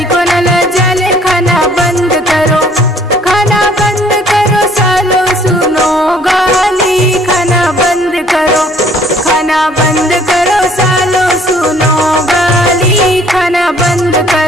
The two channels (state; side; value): normal; both; correlation 0.58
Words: न लजाले। खाना बंद करो, खाना बंद करो सालो सुनो गाली। खाना बंद करो, खाना बंद करो सालो सुनो गाली। खाना बंद